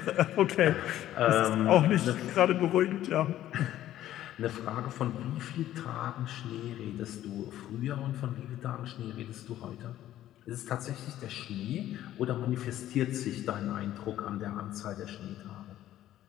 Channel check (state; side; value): quieter; right; 13.0 dB